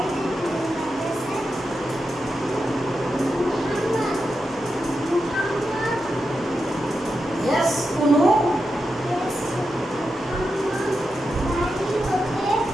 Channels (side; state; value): both; normal; correlation 0.88